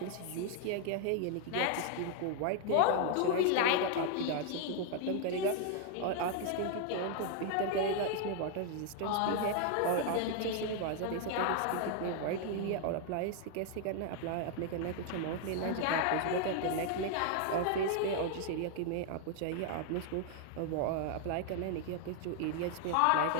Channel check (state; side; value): different; both; correlation 0.00